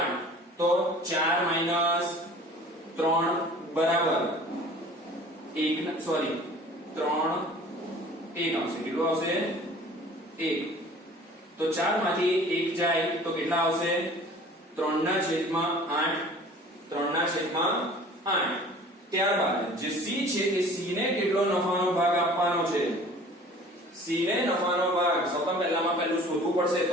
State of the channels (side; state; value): both; normal; correlation 0.47